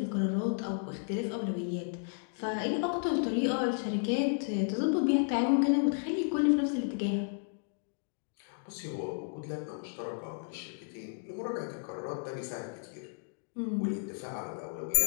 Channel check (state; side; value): silent; right; digital silence